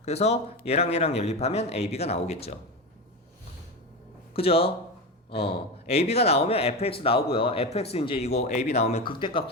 그래서 얘랑 얘랑 연립하면 AB가 나오겠죠. 그죠? AB가 나오면 FX 나오고요. FX 이제 이거 AB 나오면 극대값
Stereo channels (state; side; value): normal; both; correlation 0.20